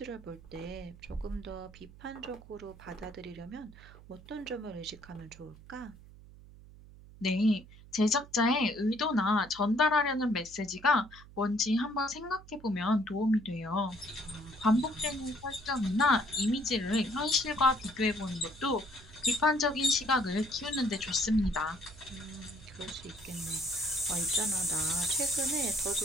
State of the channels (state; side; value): noise; right; hum, 20 dB below the sound